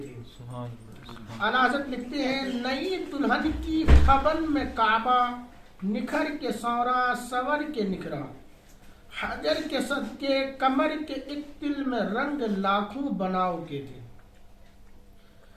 تھے۔ اعلیٰ حضرت لکھتے ہیں نئی دلہن کی خبن میں کعبہ، نکھر کے سورا سور کے نکھرا، حجر کے صدقے کمر کے ایک تل میں رنگ لاکھوں بناؤ کے تھے۔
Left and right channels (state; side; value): identical; both; correlation 1.00